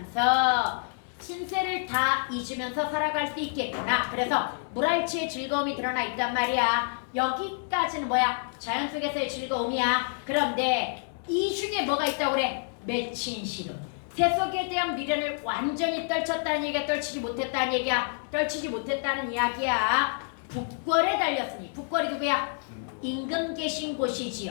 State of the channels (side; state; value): right; silent; 59 dB below the other